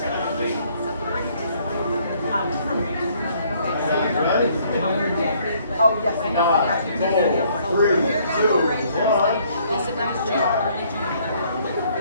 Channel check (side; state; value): both; inverted; correlation -0.64